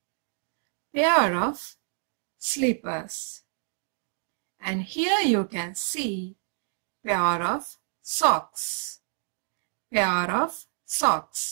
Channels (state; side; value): silent; left; digital silence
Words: Pair of slippers. And here you can see pair of socks. Pair of